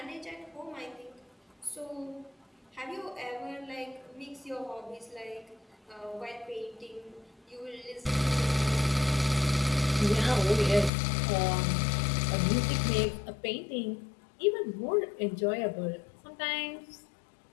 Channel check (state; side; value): drops out; right; at 10.9 s